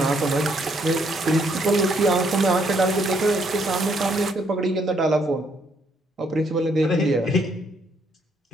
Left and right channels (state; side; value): normal; both; correlation 0.70